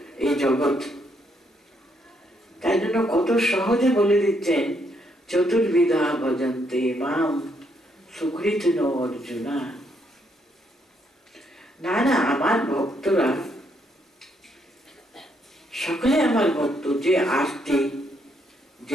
এই জগৎ। তাই জন্য কত সহজে বলে দিচ্ছেন, চতুর্বিধা ভজন্তে মাম সুকৃতিন অর্জুনা। না না, আমার ভক্তরা সকলে আমার ভক্ত, যে আর্তি,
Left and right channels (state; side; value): normal; both; correlation 0.74